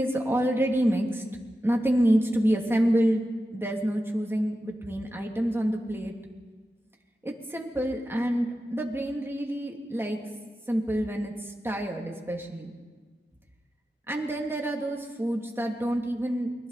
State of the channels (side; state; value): both; normal; correlation 0.91